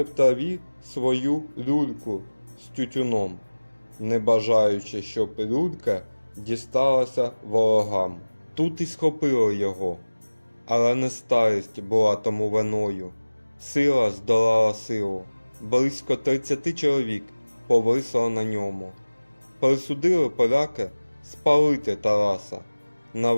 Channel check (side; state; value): both; inverted; correlation -1.00